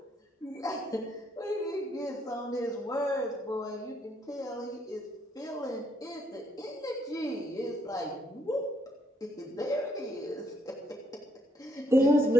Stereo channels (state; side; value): normal; both; correlation 0.71